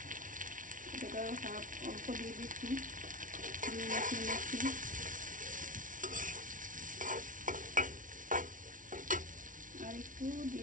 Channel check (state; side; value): late; left; 0.38 ms